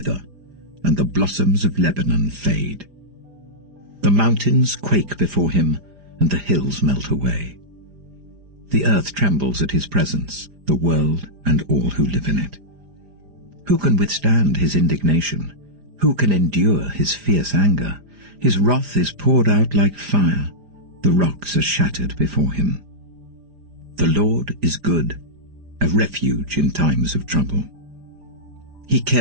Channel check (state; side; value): late; left; 4.9 ms